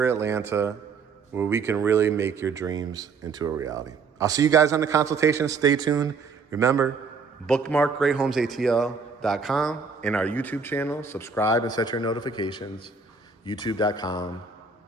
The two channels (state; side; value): quieter; left; 5.0 dB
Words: Atlanta, where we can really make your dreams into a reality. I'll see you guys on the consultation. Stay tuned. Remember, bookmark GreatHomesATL.com and our YouTube channel. Subscribe and set your notifications.